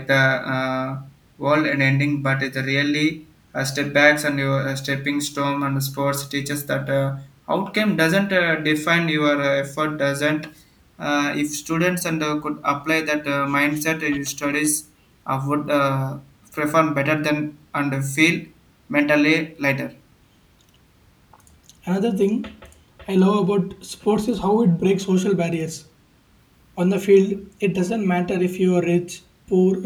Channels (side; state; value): both; identical; correlation 1.00